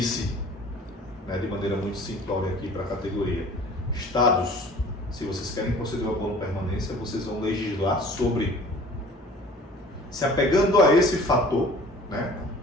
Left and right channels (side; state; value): both; normal; correlation 0.47